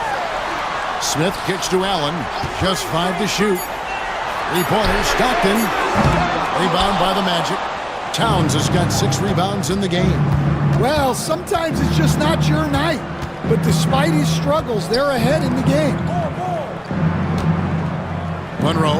Smith kicks to Allen, just 5 to shoot. 3-pointer, Stockton. Rebound by the Magic. Towns has got 6 rebounds in the game. Well, sometimes it's just not your night. But despite his struggles, they're ahead in the game.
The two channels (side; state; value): both; identical; correlation 1.00